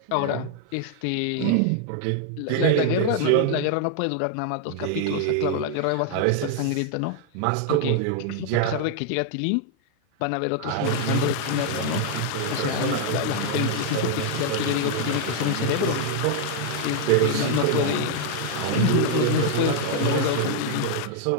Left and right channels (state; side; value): different; both; correlation 0.00